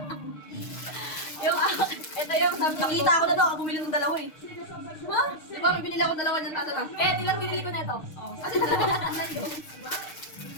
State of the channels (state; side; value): late; right; 6.5 ms